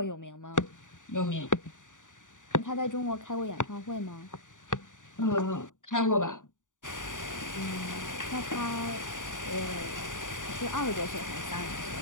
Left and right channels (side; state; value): right; late; 0.87 ms